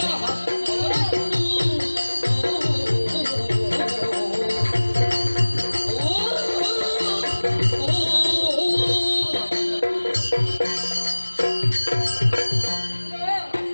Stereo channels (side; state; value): both; inverted; correlation -1.00